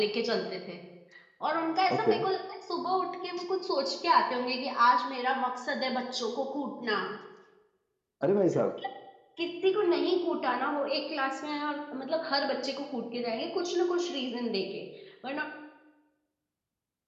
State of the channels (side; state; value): both; identical; correlation 1.00